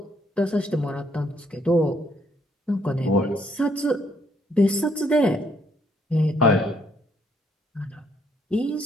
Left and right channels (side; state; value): both; normal; correlation 0.69